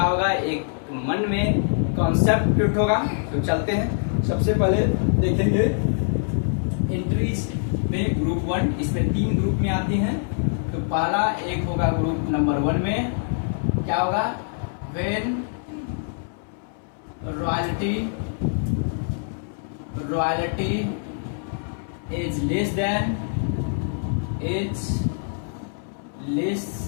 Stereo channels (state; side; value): silent; right; 62 dB below the other